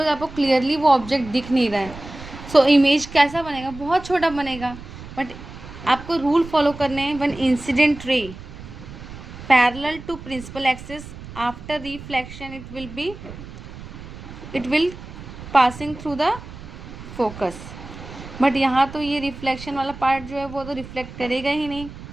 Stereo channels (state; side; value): noise; right; rumble, 14 dB below the sound